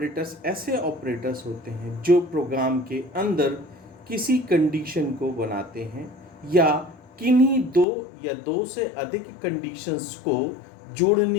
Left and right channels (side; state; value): right; drops out; at 7.9 s